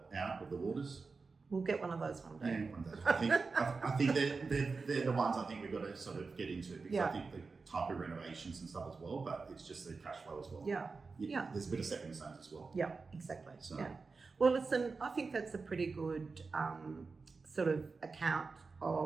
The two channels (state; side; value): quieter; left; 4.4 dB